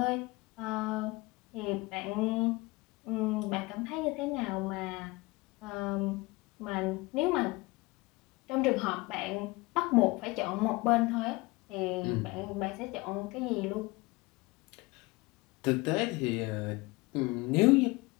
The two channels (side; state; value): right; quieter; 23.5 dB